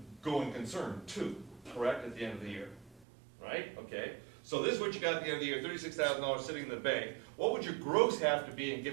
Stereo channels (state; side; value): drops out; left; at 3.1 s